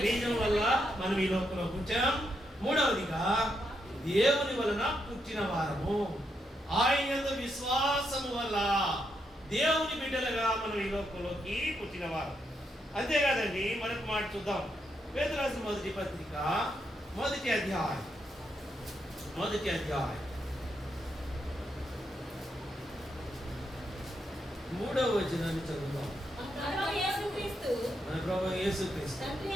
బీజం వల్ల మనం ఈ లోకంలో పుట్టాం. మూడవదిగా దేవుని వలన పుట్టిన వారము, ఆయన యందు విశ్వాసము వల్ల దేవుని బిడ్డలుగా మనం ఈ లోకంలోకి పుట్టిన వారు. అంతేకాదండి, మరొక మాట చూద్దాం. పేతురు రాసిన మొదటి పత్రిక 1వ అధ్యాయం 3వ వచనాన్ని చదువుదాం. మన ప్రభువు యేసుక్రీస్తు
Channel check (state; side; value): normal; both; correlation 0.80